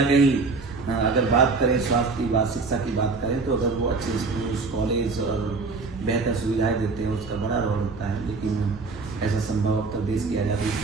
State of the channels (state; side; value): quieter; left; 4.1 dB